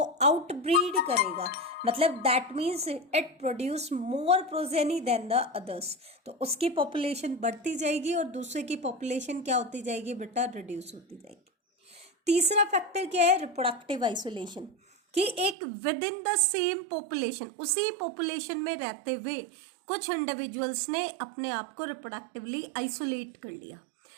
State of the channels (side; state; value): left; drops out; at 15.6 s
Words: आउटब्रीड करेगा, मतलब that means it produce more progeny then the others, तो उसकी पॉपुलेशन बढ़ती जाएगी और दूसरे की पॉपुलेशन क्या होती जाएगी बेटा, रिड्यूस होती जाएगी। तीसरा फैक्टर क्या है, रिप्रोडक्टिव आइसोलेशन। कि एक with in the same population, उसी पॉपुलेशन में रहते हुए कुछ इंडिविजुअल्स ने अपने आप को रिप्रोडक्टिवली आइसोलेट कर लिया,